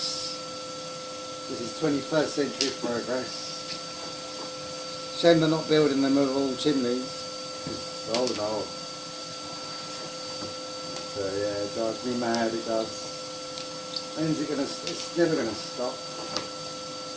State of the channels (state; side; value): identical; both; correlation 1.00